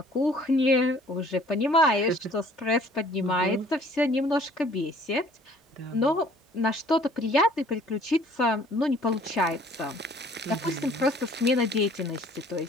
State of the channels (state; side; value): normal; both; correlation 0.56